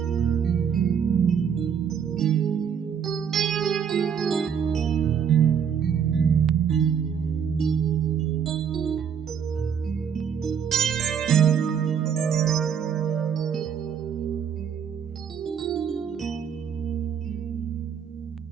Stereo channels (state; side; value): quieter; left; 7.6 dB